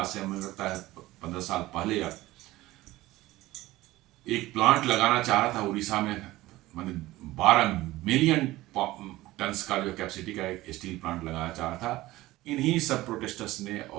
से हमें लगता है 15 साल पहले, एक प्लांट लगाना चाह रहा था उड़ीसा में, मतलब 12 मिलियन टन्स का जो कैपेसिटी का एक स्टील प्लांट लगाना चाह रहा था। इन्हीं सब प्रोटेस्टर्स ने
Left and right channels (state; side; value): quieter; left; 17.6 dB